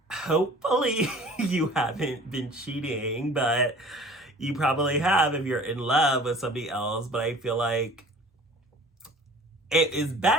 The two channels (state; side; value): normal; both; correlation 0.46